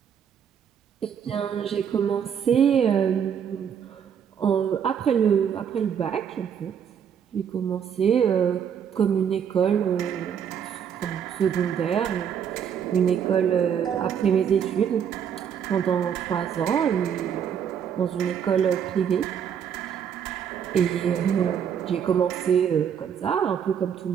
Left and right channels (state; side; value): quieter; left; 8.1 dB